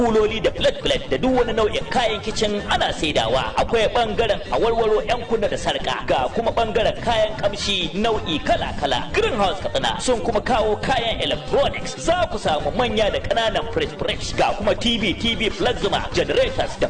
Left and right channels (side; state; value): both; identical; correlation 1.00